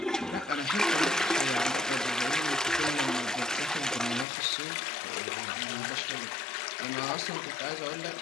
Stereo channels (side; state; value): right; drops out; at 4.2 s